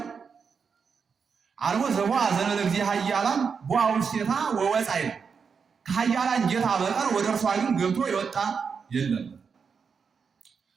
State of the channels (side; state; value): left; quieter; 5.9 dB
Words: አልቦ ዘቦአ ዘእንበለ እግዚእ ኃያላን ቦአ ውስቴታ ወወፃ ይላል። ከኃያላን ጌታ በቀር ወደ እርሷ ግን ገብቶ የወጣ የለም።